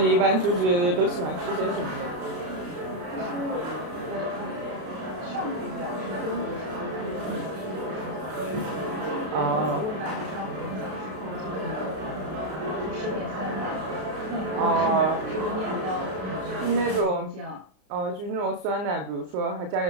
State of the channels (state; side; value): late; left; 32 ms